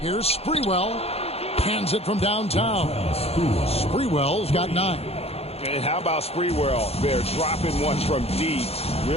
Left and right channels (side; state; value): right; late; 0.29 ms